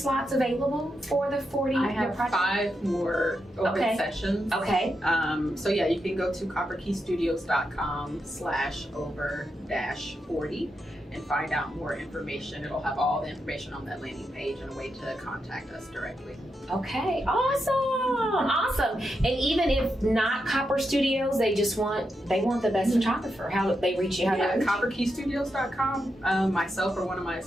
available for the 40 I your have project? 5 more open Okay. sessions. Okay. So yeah, you can go to copperkeystudios.com/over-40 and find out more information. It'll have all the information on that landing page and a way to contact us directly. Okay. Awesome. Awesome. And even if not Copper Studios, they want the best photographer. How do they reach you? How do Yeah, they reach you? copperkeystudios.com. Myself or one of my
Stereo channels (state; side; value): normal; both; correlation 0.85